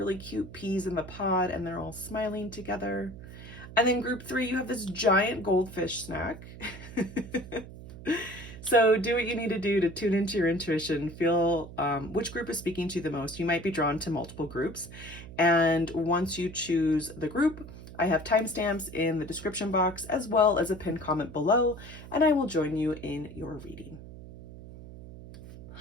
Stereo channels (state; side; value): noise; right; hum, 14 dB below the sound